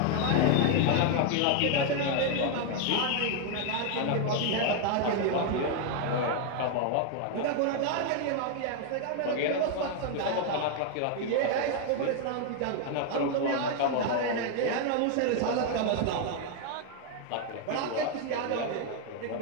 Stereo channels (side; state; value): both; different; correlation 0.00